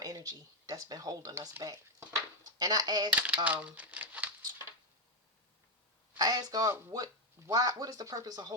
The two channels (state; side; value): normal; both; correlation 0.05